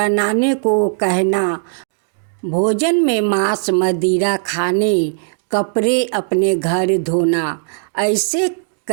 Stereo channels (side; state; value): left; silent; digital silence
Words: को कहना, भोजन में मांस मदिरा खाने, कपड़े अपने घर धोना। ऐसे